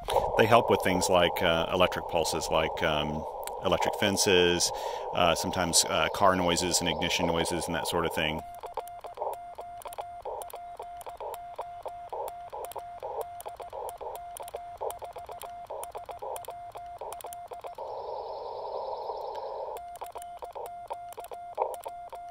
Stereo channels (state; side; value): identical; both; correlation 1.00